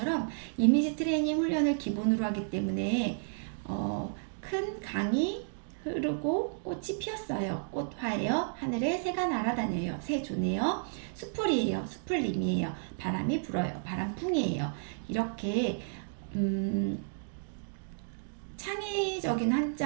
이미지 트레이닝 훈련을 기본으로 하기 때문에 큰 강이 흐르고 꽃이 피었어요. 꽃화예요. 하늘에 새가 날아다녀요. 새조네요. 수풀이에요. 수풀님이에요. 바람이 불어요. 바람풍이에요. 이렇게 창의적인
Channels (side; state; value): left; silent; digital silence